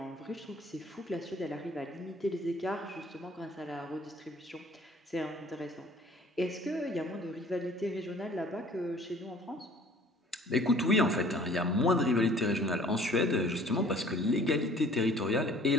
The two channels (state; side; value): normal; both; correlation 0.53